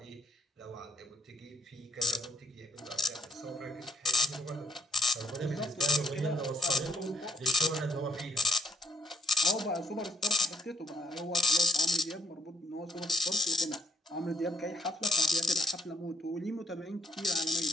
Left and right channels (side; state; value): both; normal; correlation 0.68